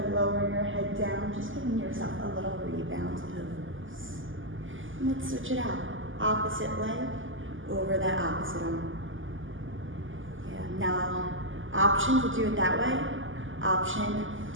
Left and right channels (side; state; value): left; late; 0.58 ms